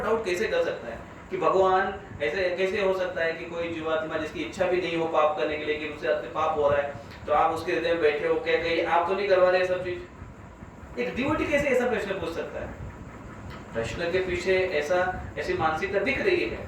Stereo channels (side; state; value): both; identical; correlation 1.00